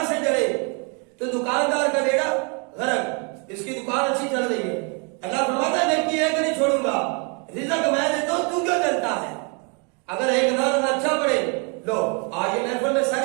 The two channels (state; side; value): quieter; left; 35.0 dB